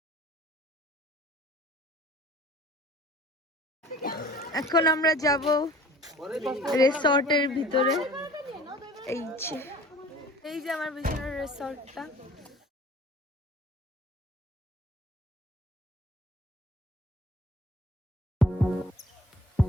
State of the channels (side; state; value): both; normal; correlation 0.47